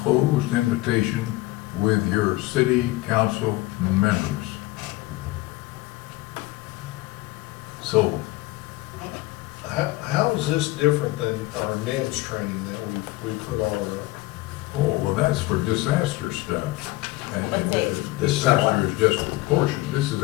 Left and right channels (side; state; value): right; quieter; 19.5 dB